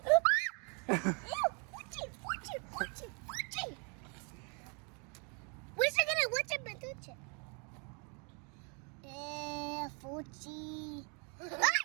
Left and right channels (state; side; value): quieter; left; 35.9 dB